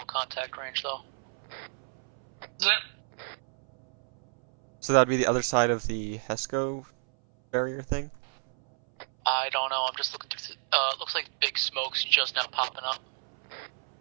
contact range, though. Is it? So that'd be the other side of the HESCO barrier thing? I don't know, I'm just looking through, looks like big smoke's just now popping up.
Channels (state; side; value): silent; left; 58 dB below the other